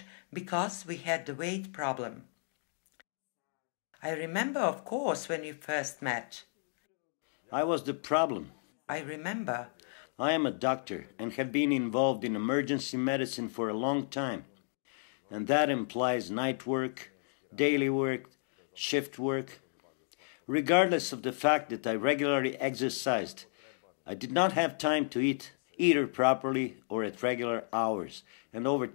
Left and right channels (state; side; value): silent; right; digital silence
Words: because we had the weight problem. I remember, of course, when we first met. I was the problem. I remember. I am a doctor and have been involved in emergency medicine for a long time. And that implies night work, daily work, shift work. Regardless of the fact that I regularly exercised, I did not have time to eat either properly or at regular hours. And over